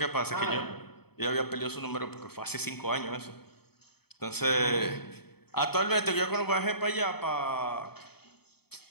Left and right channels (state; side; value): late; right; 0.97 ms